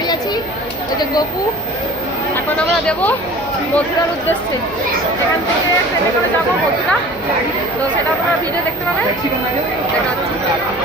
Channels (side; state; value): right; noise; hum, 20 dB below the sound